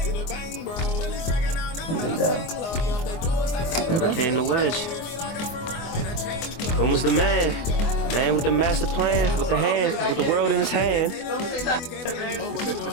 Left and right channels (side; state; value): right; late; 24 ms